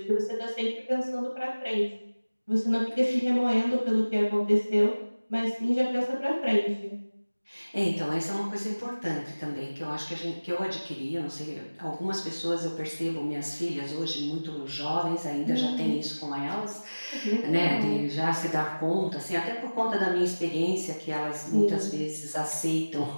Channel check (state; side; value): inverted; both; correlation -1.00